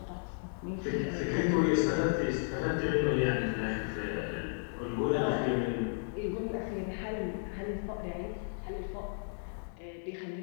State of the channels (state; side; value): silent; right; digital silence